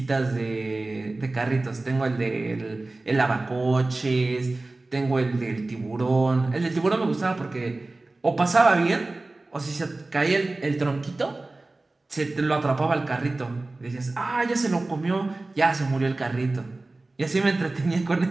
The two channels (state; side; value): quieter; left; 3.1 dB